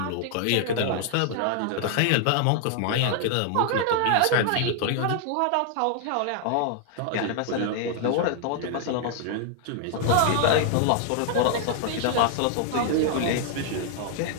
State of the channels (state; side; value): different; both; correlation 0.00